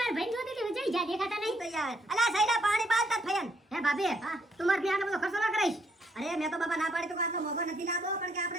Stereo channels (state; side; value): normal; both; correlation 0.71